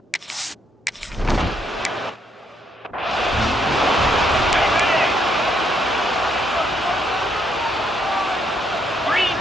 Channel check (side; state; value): both; normal; correlation 0.73